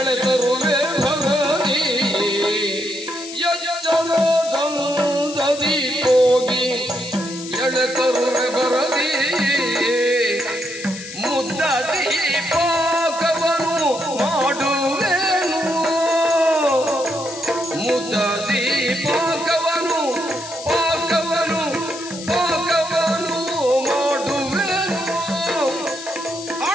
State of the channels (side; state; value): left; noise; hiss, 12 dB below the sound